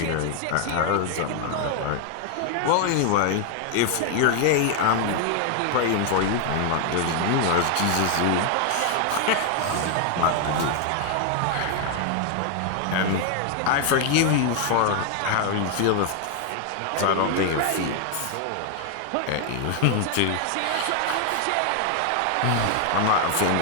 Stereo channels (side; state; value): both; different; correlation 0.00